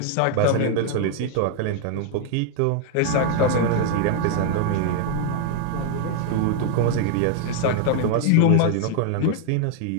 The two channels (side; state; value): both; different; correlation 0.00